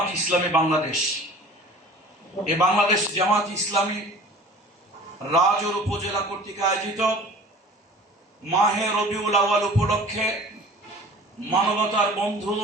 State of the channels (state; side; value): normal; both; correlation 0.45